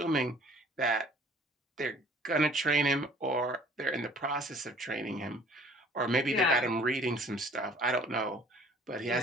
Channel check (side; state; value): both; normal; correlation 0.54